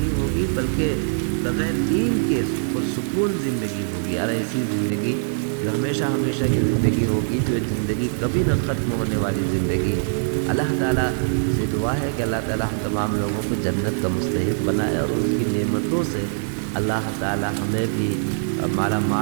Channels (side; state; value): left; silent; 56 dB below the other